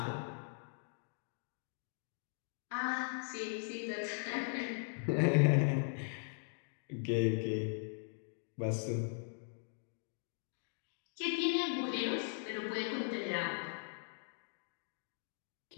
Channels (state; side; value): silent; right; digital silence